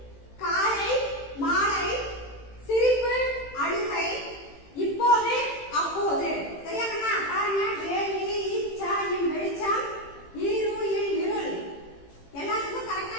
காலை, மாலை, சிரிப்பு, அழுகை, இப்போது, அப்போது. சரியா கண்ணா? பாருங்க, வேலி, ஈச்சாயின் வெளிச்சம், ஈருயில் இருள். எல்லாத்துக்கும் கரெக்டா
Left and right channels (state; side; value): late; right; 18 ms